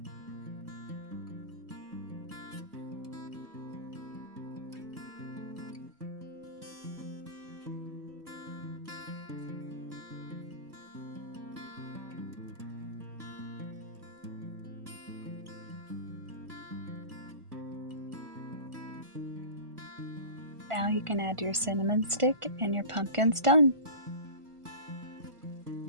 Now you can add your cinnamon stick and your pumpkin's done.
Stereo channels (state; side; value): late; left; 1.5 ms